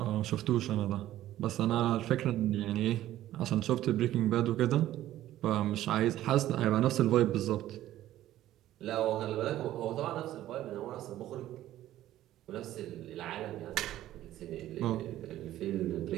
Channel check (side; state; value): left; quieter; 13.7 dB